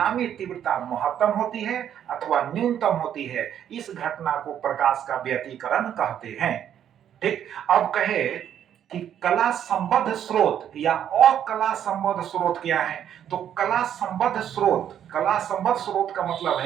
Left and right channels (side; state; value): left; quieter; 9.8 dB